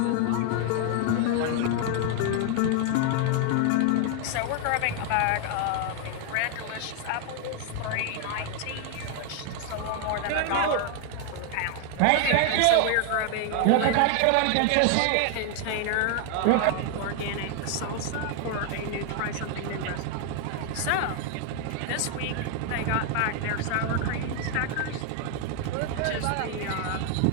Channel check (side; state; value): both; different; correlation 0.00